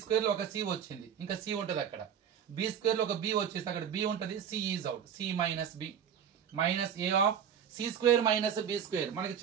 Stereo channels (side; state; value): left; quieter; 8.3 dB